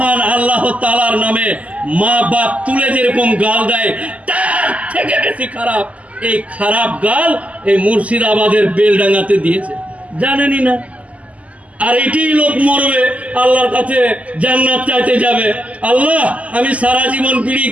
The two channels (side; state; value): left; late; 0.069 ms